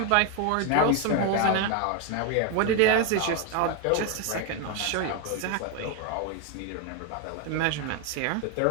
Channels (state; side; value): different; both; correlation 0.01